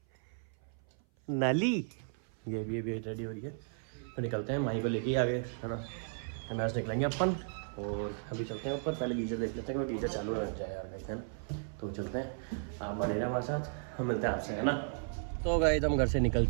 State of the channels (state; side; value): silent; left; 55 dB below the other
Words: नाली। ये भी रेडी हो रही है, तो निकलते हैं। माई को लेके ही आगे है ना, मैच निकलेंगे अपन। और अभी चलते हैं ऊपर, पहले गीजर देख लेते हैं कि गीजर चालू हो जाए यार गाइस है ना। तो चलते हैं, आप बने रहे हमारे साथ, हम मिलते हैं आपसे है ना। तो गाइस हम घर से निकल